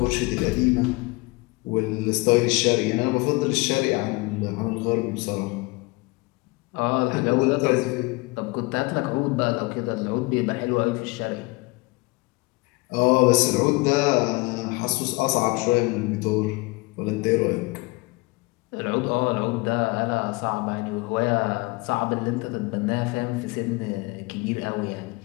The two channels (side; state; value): right; quieter; 24.8 dB